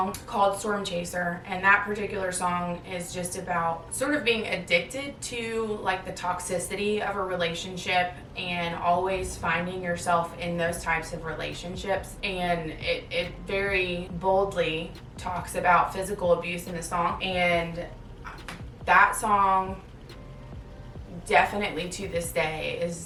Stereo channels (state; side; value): identical; both; correlation 1.00